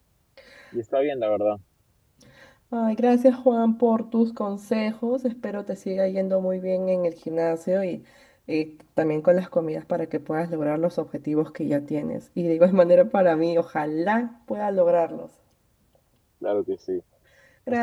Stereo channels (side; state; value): both; identical; correlation 1.00